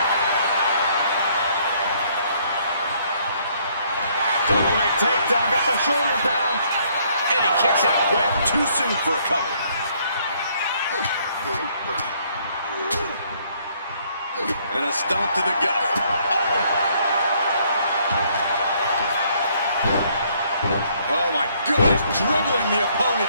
Double leg takedown, got the shoulders down. And he kicks out quick. Too soon for a cover. And a stomp to the gut. Oh my goodness, dribbling the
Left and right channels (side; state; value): both; inverted; correlation -0.66